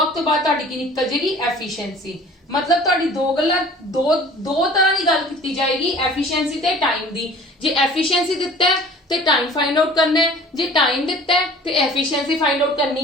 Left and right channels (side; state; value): both; normal; correlation 0.47